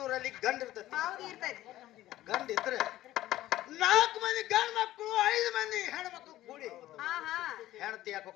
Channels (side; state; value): right; quieter; 14.9 dB